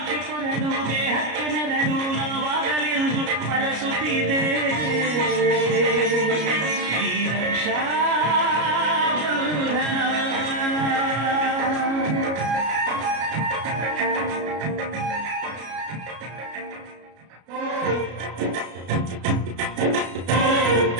ಕೊರಡು ದೇಹಕ್ಕೆ ನೆರಳು ನಾವಾಗಲೆಂದು ಪರಸುತ್ತಿದೆ ಈ ರಕ್ಷಾ ಬಂಧನ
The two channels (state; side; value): late; left; 33 ms